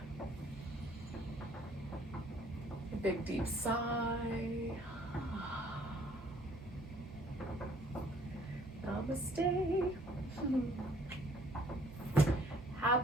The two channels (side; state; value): both; normal; correlation 0.60